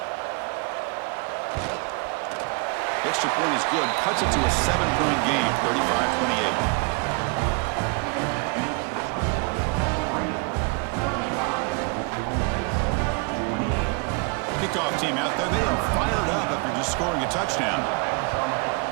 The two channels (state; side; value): quieter; left; 32.0 dB